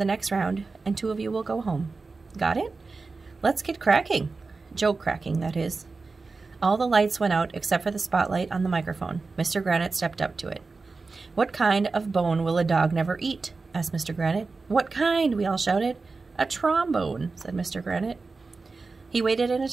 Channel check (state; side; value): quieter; left; 4.0 dB